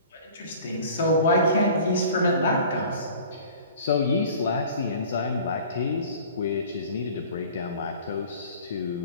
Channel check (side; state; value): both; inverted; correlation -0.45